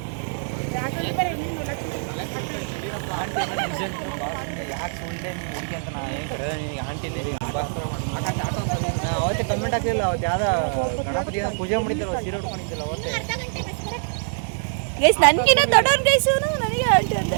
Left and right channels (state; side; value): silent; left; digital silence